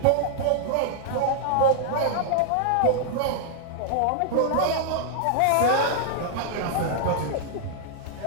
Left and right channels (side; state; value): both; different; correlation -0.01